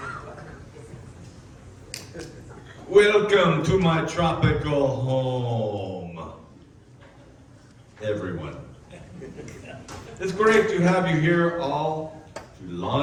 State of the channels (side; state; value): both; identical; correlation 1.00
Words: Welcome to my tropical home, everyone. It's great to have you here all to